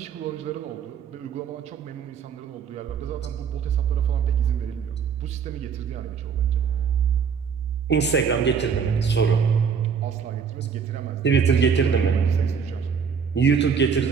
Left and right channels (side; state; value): left; quieter; 6.6 dB